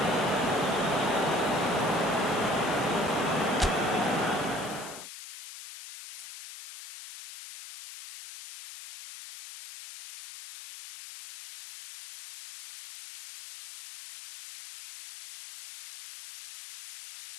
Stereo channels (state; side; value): noise; left; hiss, 13 dB below the sound